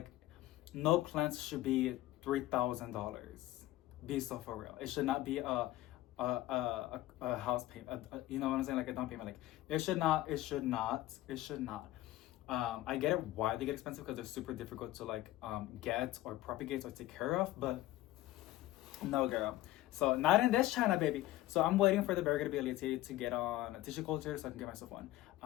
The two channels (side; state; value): right; quieter; 15.9 dB